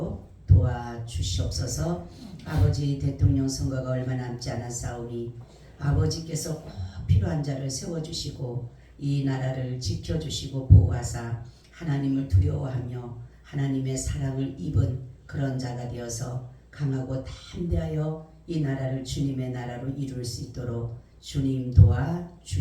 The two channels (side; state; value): both; identical; correlation 1.00